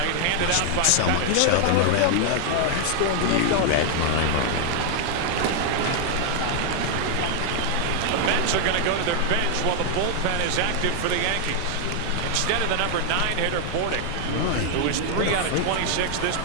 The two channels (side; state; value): both; different; correlation 0.00